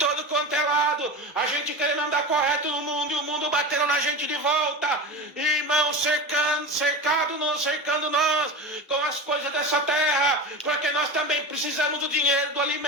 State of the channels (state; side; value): normal; both; correlation 0.28